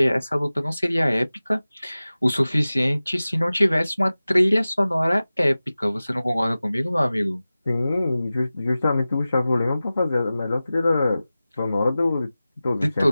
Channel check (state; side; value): inverted; both; correlation -0.96